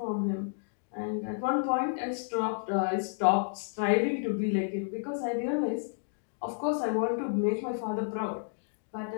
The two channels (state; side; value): silent; right; digital silence